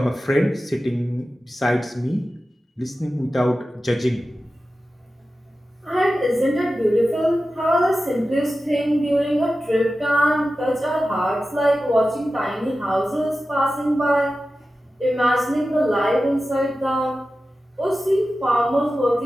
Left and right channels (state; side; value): normal; both; correlation 0.94